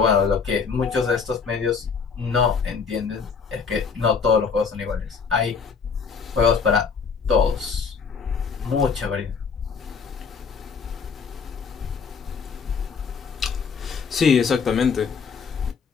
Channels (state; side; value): quieter; right; 5.7 dB